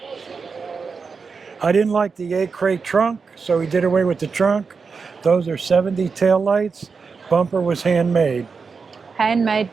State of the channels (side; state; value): left; quieter; 5.1 dB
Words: I didn't like the 8-crate trunk, so we did away with the trunk. Those are 70 tail lights. Bumper was handmade. Handmade